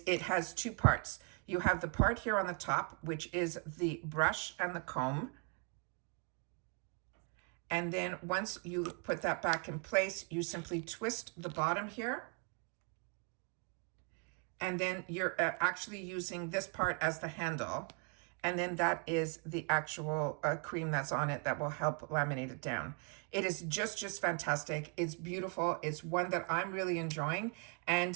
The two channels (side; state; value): left; quieter; 37.1 dB